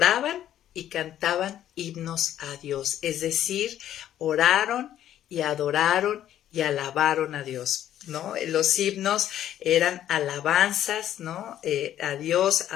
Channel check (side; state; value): right; quieter; 11.5 dB